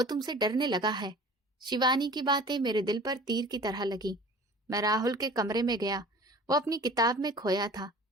तुमसे डरने लगा है। शिवानी की बातें मेरे दिल पर तीर की तरह लगी। मैं राहुल के कमरे में गया। वो अपनी किताब में खोया था।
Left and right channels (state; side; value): normal; both; correlation 0.43